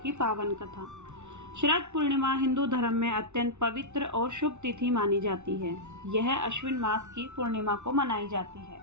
पावन कथा। शरद पूर्णिमा हिंदू धर्म में अत्यंत पवित्र और शुभ तिथि मानी जाती है। यह अश्विन मास की पूर्णिमा को मनाई जाती है।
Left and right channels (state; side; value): late; left; 0.83 ms